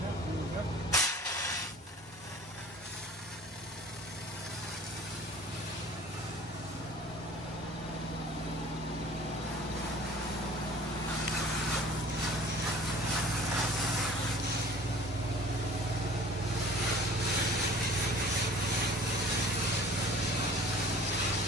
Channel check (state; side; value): normal; both; correlation 0.47